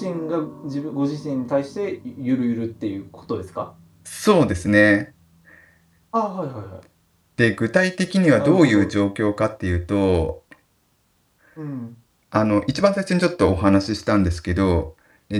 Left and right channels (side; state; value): both; identical; correlation 1.00